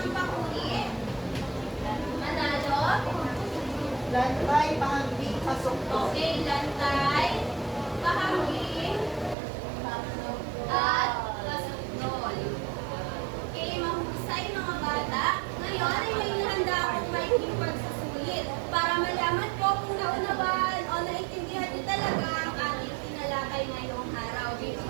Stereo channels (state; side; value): drops out; left; at 9.3 s